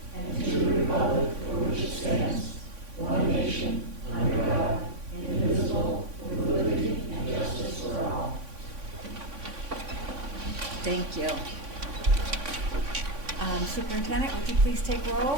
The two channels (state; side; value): late; left; 3.5 ms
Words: and to the republic for which it stands, one nation, under God, indivisible, with liberty and justice for all. Thank you. Superintendent, would you please take roll?